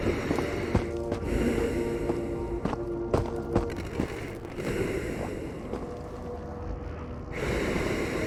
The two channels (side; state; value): both; identical; correlation 1.00